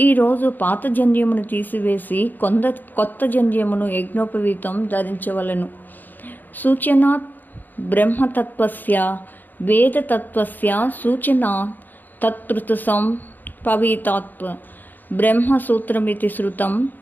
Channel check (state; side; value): late; right; 0.087 ms